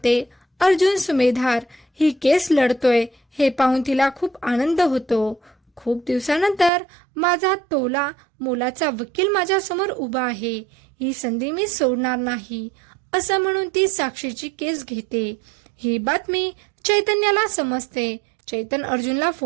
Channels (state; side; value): drops out; left; at 6.7 s